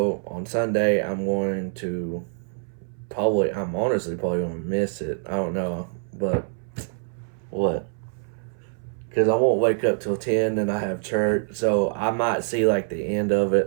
on Sunday, I'm honestly probably going to miss it. I don't know. But what? Because I won't wake up till 10 and I have church. So I might see like the end of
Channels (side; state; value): left; silent; 60 dB below the other